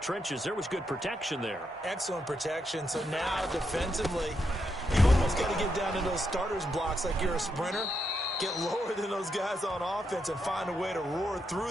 There was good protection there. Excellent protection. So now, defensively, you almost got to get down to those starters blocks like you're a sprinter. Get lower than those guys on offense and find a way to roar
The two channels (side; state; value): both; normal; correlation 0.81